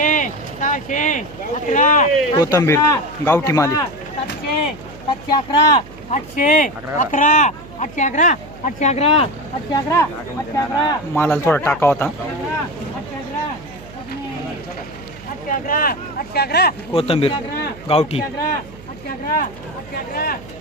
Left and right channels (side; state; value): right; noise; hum, 19 dB below the sound